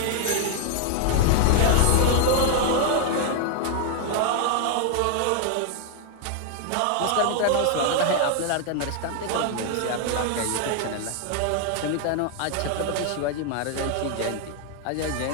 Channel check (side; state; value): both; different; correlation 0.00